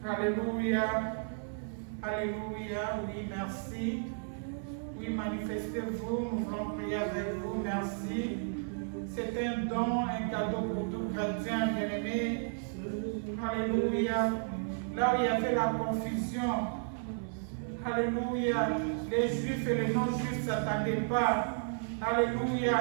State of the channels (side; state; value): left; silent; 56 dB below the other